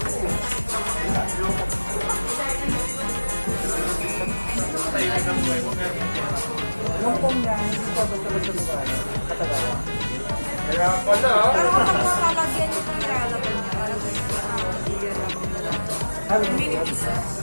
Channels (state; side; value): inverted; both; correlation -1.00